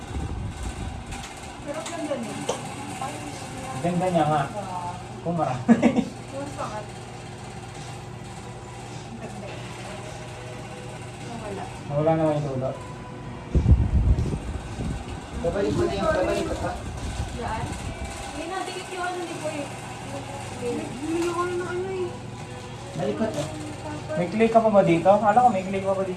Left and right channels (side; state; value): both; identical; correlation 1.00